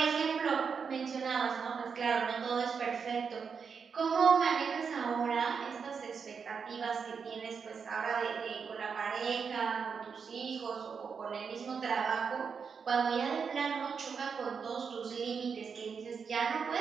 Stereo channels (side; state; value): left; quieter; 6.0 dB